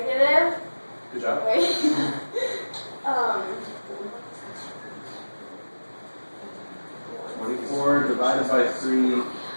Good job. Wait. 24 divided by 3.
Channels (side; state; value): both; inverted; correlation -1.00